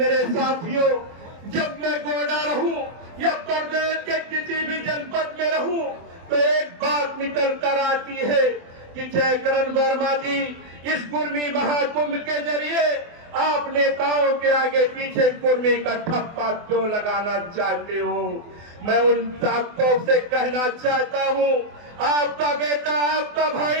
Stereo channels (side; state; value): left; late; 24 ms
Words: साथियों, जब मैं गोंडा रहूं या प्रदेश के किसी भी जनपद में रहूं तो एक बात निकल कर आती है कि जयकरण वर्मा जी इस कुर्मी महाकुंभ के जरिए आप नेताओं के आगे पीछे कुर्मी का ठप्पा क्यों लगाना चाहते हो। मैं उन ताकतों से कहना चाहता हूं, आपका बेटा, आपका